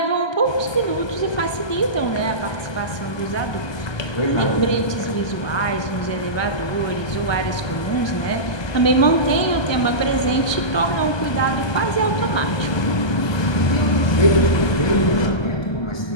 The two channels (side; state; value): right; late; 1.2 ms